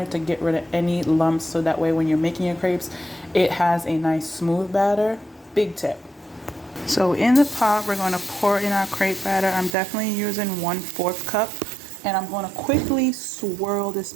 to get rid of any lumps, so that way when you're making your crepes, it has a nice smooth batter. Big tip. So in the pot, we're going to pour in our crepe batter. I'm definitely using 1/4 cup, and I'm going to quickly swirl this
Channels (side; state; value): left; drops out; at 9.8 s